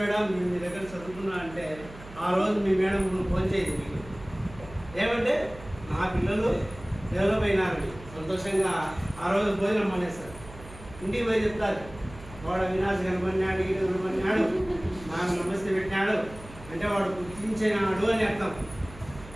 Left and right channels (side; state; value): right; noise; hum, 17 dB below the sound